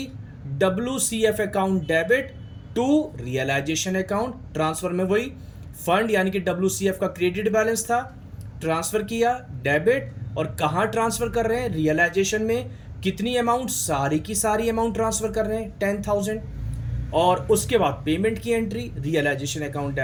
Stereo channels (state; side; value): identical; both; correlation 1.00